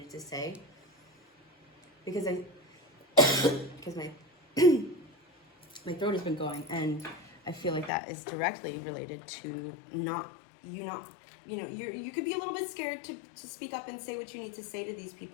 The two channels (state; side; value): drops out; right; at 7.9 s